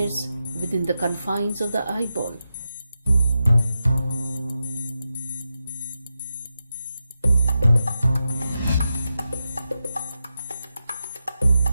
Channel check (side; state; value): both; inverted; correlation -0.89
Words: within the confines of the eyeball.